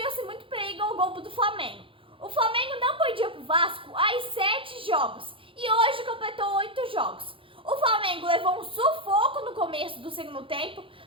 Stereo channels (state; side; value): late; left; 0.25 ms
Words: muito perigo ao gol do Flamengo. O Flamengo não perdia para o Vasco há 7 jogos e hoje completou 8 jogos. O Flamengo levou um sufoco no começo do segundo tempo,